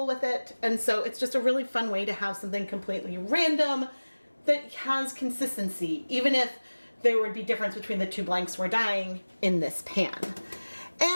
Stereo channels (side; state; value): both; inverted; correlation -1.00